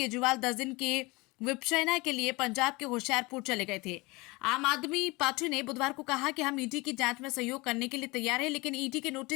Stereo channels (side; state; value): right; quieter; 24.2 dB